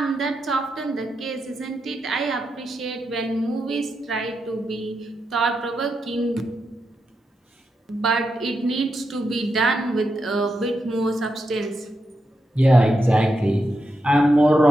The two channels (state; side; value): normal; both; correlation 0.86